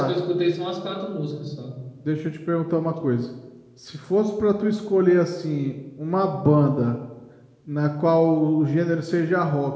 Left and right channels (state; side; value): identical; both; correlation 1.00